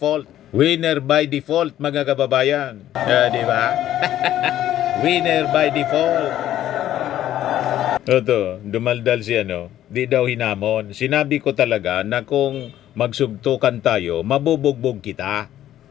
Winner by default mga kababayan. Di ba? Winner by default. Ito, dumaldal si di daw hinamon. Sinabi ko talaga na kung magsugtukan tayo, mabubugbog kita.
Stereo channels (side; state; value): right; quieter; 12.4 dB